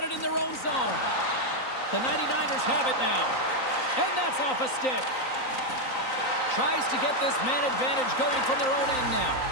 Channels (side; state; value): right; late; 3.9 ms